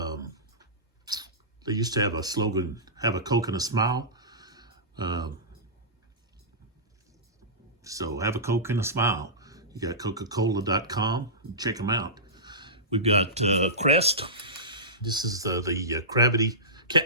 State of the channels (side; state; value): both; normal; correlation -0.19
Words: used to have a slogan, have a Coke and a smile. So have a Coke and a smile. You got Coca-Cola.com. Check them out. We've got Crest. This is the